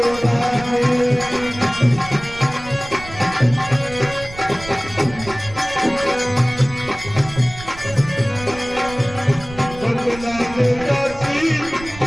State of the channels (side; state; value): right; noise; rumble, 16 dB below the sound